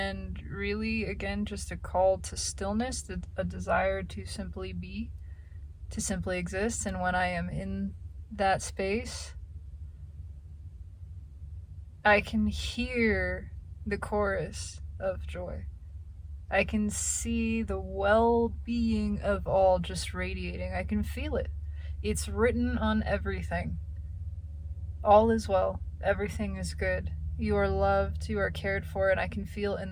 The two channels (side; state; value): both; identical; correlation 1.00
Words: really, again, just a call to stillness, a desire to simply be, to simply exist. And when I am in that space, I can hear the chorus of joy. I can see the well-being of all just radiating. I can feel it. It's written on everything. All is well. Everything is good. You are loved. You are cared for. And I can feel in